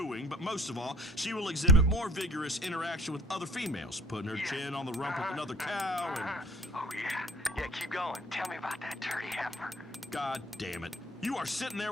but most of all, she will exhibit more vigorous interaction with other females, putting her chin on the rump of another cow and... Oh, yeah, keep going. Tell me about that dirty heifer. God damn it. You are sitting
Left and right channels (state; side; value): normal; both; correlation 0.51